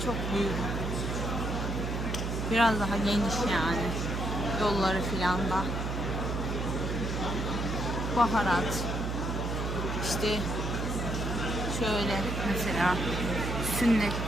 Çok büyük. Biraz daha geniş yani. Yolları filan da. Baharat. İşte şöyle mesela sünnet,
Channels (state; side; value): noise; right; hum, 2 dB below the sound